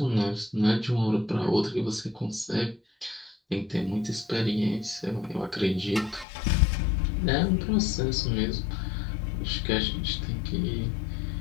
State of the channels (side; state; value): right; drops out; at 6.2 s